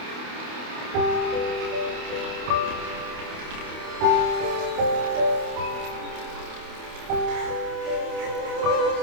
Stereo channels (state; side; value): late; left; 28 ms